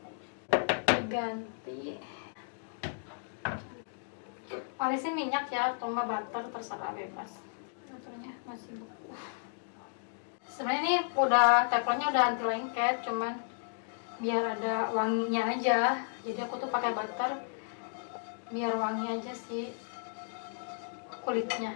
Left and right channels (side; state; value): right; silent; digital silence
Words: Diganti. Olesin minyak ya, atau nggak butter, terserah bebas. Butternya masih beku. Sebenarnya ini udah teflonnya udah anti lengket, cuman biar ada wanginya aja. Jadi aku tuh pakai butter biar wangi aja sih kulitnya.